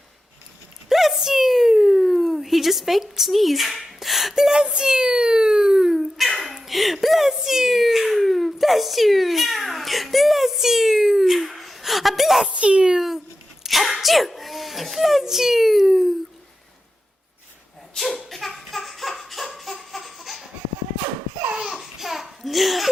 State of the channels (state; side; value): normal; both; correlation 0.90